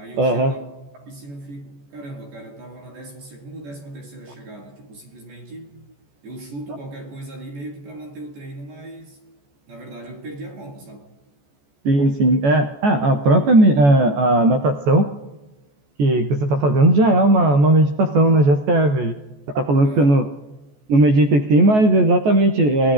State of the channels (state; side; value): late; left; 14 ms